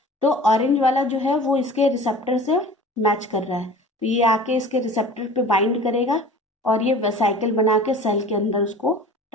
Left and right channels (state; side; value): normal; both; correlation 0.42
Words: तो ऑरेंज वाला जो है वो इसके रिसेप्टर से मैच कर रहा है, तो ये आके इसके रिसेप्टर पे बाइंड करेगा और ये वेसाइकल बना के सेल के अंदर उसको